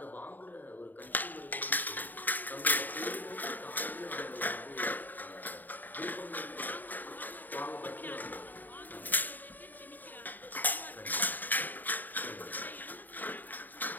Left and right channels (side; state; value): right; late; 0.088 ms